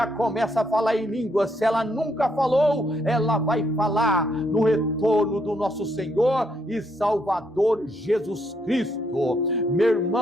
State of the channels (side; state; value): both; normal; correlation 0.74